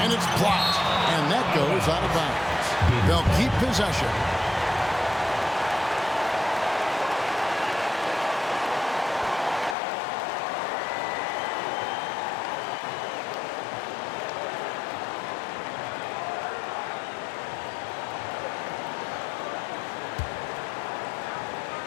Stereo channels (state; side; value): drops out; right; at 9.8 s